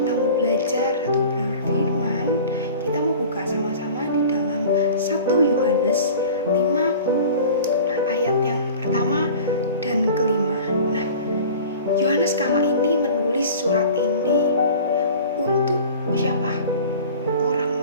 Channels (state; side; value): inverted; both; correlation -0.41